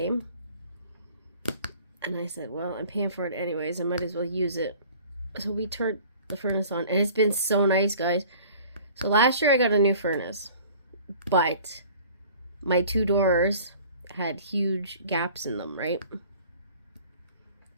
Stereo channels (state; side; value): inverted; both; correlation -0.48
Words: And I said, well, I'm paying for it anyways, I might as well use it. So we turned the furnace on, and it's been so nice, guys. So last year I got a new furnace, but my 2 doors had huge gaps in them, right?